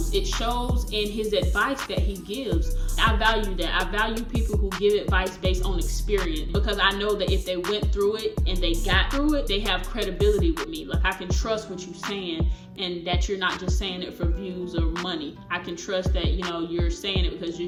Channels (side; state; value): both; identical; correlation 1.00